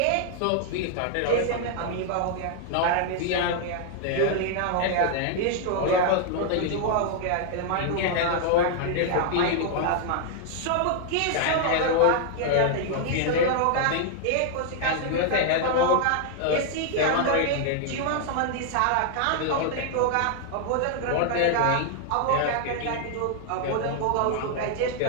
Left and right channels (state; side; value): different; both; correlation 0.00